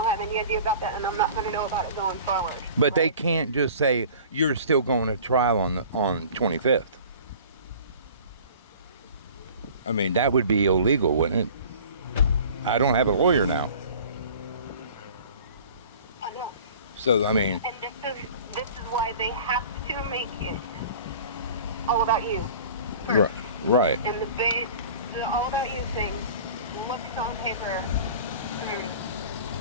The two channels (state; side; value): inverted; both; correlation -0.44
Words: have any idea about that, and I'm not going to know about it going forward. But right? They can't just say you're still going to trial on 25th. I mean, that would be illegal, wouldn't it? I don't have a lawyer now. I know. So, I mean... And this is why they have to make it all about you. First. Right. And the all about you thing looks on paper.